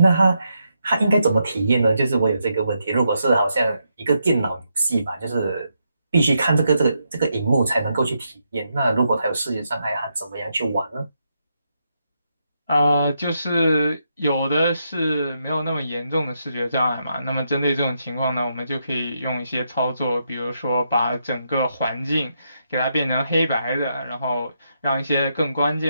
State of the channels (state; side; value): inverted; both; correlation -0.81